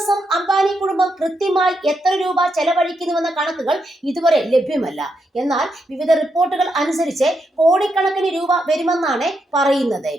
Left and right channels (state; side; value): normal; both; correlation 0.82